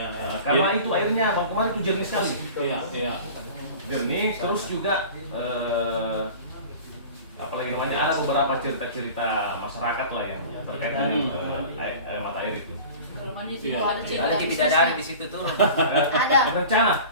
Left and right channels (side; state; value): both; inverted; correlation -0.39